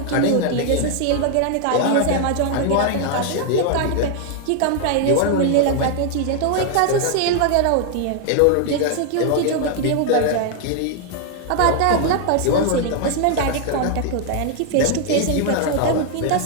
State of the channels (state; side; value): different; both; correlation 0.00